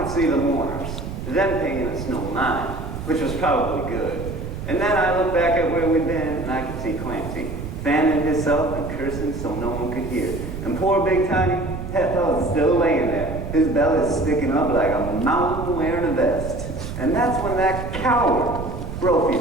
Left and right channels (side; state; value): right; noise; rumble, 7 dB below the sound